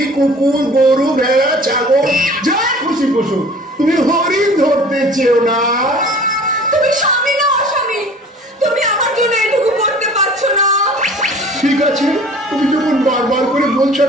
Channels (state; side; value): normal; both; correlation 0.46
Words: কুকুর, গরু, ভেড়া, ছাগল যা খুশি পশু, তুমি হরিণ ধরতে চেও না। তুমি স্বামী না অস্বামী? তুমি আমার জন্য এটুকু করতে পারছো না? ঠিক আছে, তুমি যখন বারবার করে বলছো